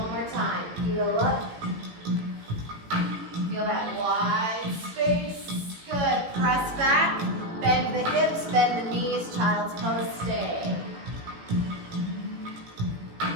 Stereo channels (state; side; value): late; left; 18 ms